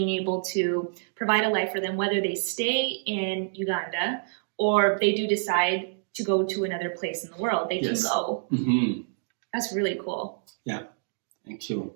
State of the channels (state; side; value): silent; left; digital silence